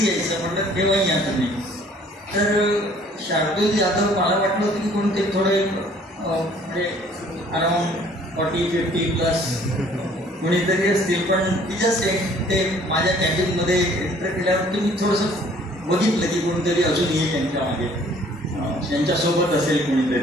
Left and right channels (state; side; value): normal; both; correlation 0.57